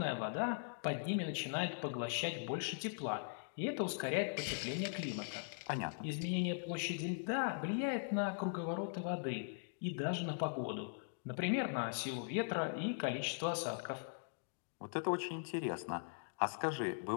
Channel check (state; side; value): silent; right; digital silence